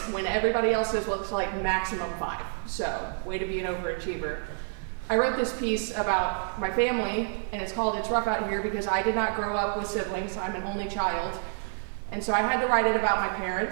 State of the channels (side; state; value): left; silent; digital silence